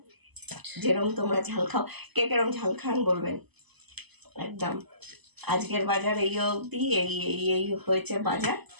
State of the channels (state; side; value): late; left; 0.99 ms